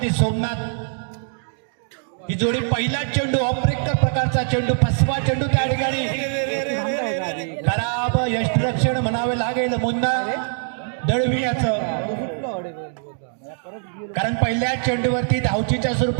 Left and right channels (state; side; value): silent; left; digital silence